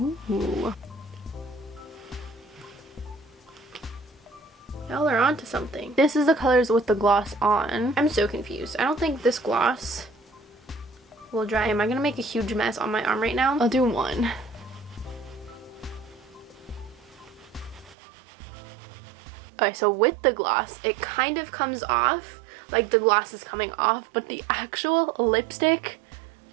Y'all are onto something. This is the colors with the gloss on. I'm so confused. I don't think this gloss will dry. Am I gonna make a huge mess on my arm right now? I'll do one. Okay, so with the gloss, it kind of comes off, like the gloss is coming off, but the actual lipstick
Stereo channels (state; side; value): drops out; left; at 17.9 s